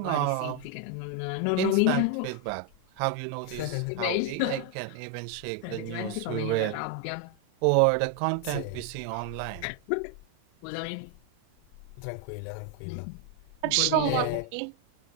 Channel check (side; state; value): both; different; correlation 0.01